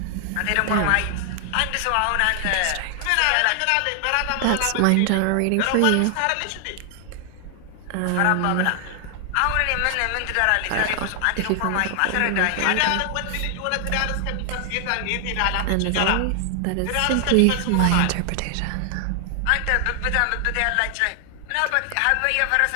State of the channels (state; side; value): different; both; correlation 0.00